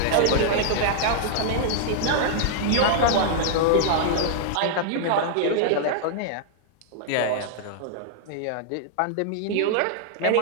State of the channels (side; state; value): both; different; correlation -0.01